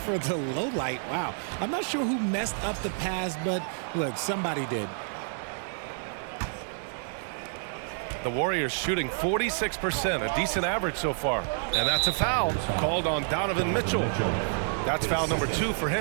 the low light. Wow. I'm not sure who messed up the pass, but look, somebody did. The Warriors shooting 46%, a decent average so far. And that's a foul called on Donovan Mitchell. That's foul number 2 for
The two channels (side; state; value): left; silent; 59 dB below the other